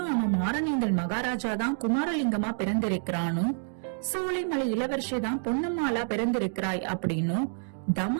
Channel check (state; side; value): silent; left; digital silence